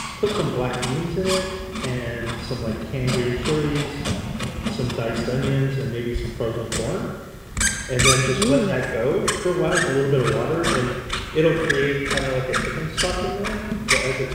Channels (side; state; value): both; identical; correlation 1.00